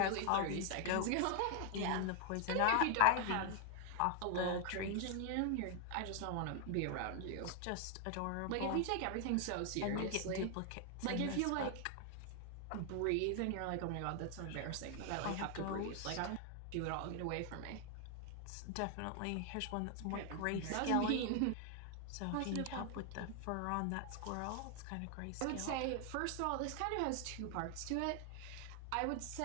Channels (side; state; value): both; different; correlation 0.00